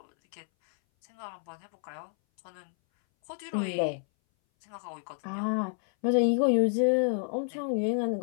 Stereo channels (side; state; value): right; silent; 58 dB below the other